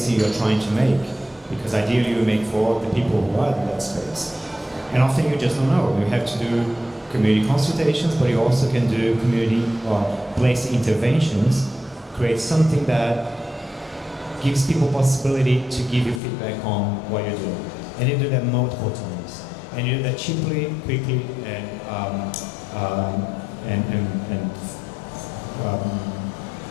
you're trying to make. Because ideally you make for the people who are in that space. And often you just don't know. You have to do community consultations, but you also can do community or place interventions, create something that gives people possibility to give you feedback on what you're doing. And you do that multiple times. And you do that cheaply, quickly, and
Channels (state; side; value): drops out; right; at 16.2 s